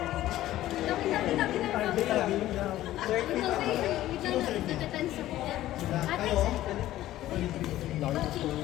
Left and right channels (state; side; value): quieter; right; 14.5 dB